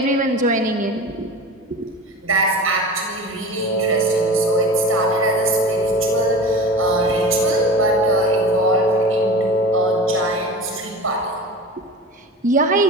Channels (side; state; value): both; normal; correlation 0.33